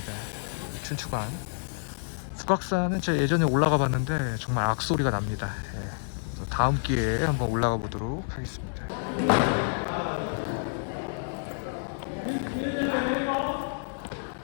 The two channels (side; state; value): right; silent; 59 dB below the other